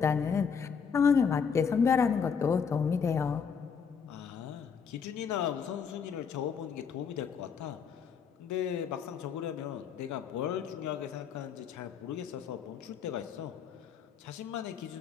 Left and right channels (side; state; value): right; quieter; 6.5 dB